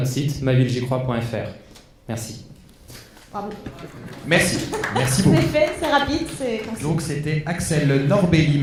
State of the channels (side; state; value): both; identical; correlation 1.00